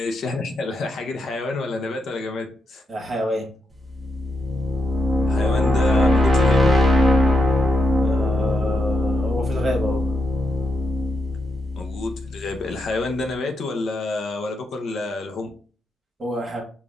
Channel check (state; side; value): normal; both; correlation 0.84